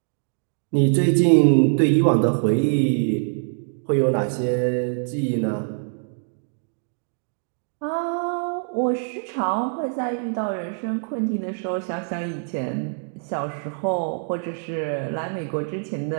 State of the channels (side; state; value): left; silent; 63 dB below the other